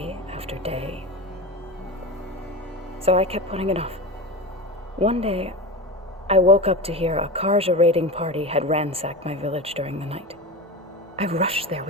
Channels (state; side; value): normal; both; correlation 0.25